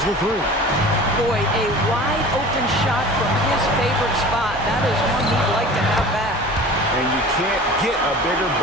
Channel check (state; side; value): normal; both; correlation 0.40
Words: the 3. Boy, a wide open shot from his favorite spot. That is one he'd like to have back. and you can't get a bigger